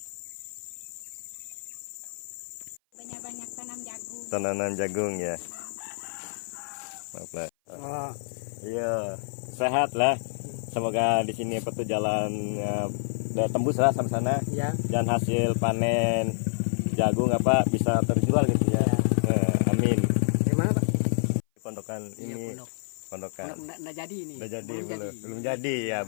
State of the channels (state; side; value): silent; right; 55 dB below the other